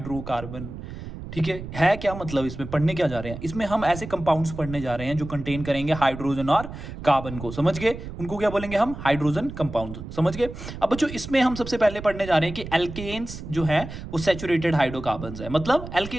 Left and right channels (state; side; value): noise; right; rumble, 10 dB below the sound